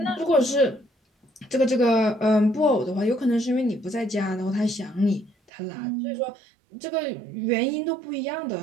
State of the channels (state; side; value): drops out; left; at 5.5 s